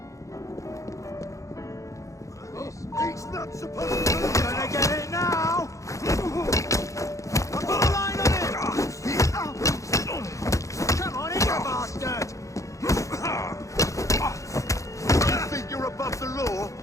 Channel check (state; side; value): late; right; 0.15 ms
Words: He's not supposed to be gonna get it now! I'll put a line on it! Come on in, you bastard! You think you're above the law?